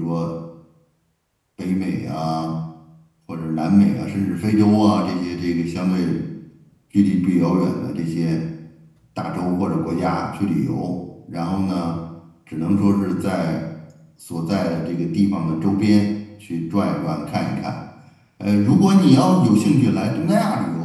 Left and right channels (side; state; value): both; identical; correlation 1.00